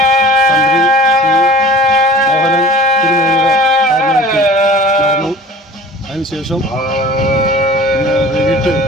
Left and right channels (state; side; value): normal; both; correlation 0.43